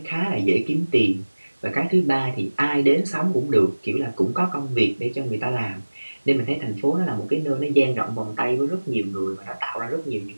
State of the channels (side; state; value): both; inverted; correlation -1.00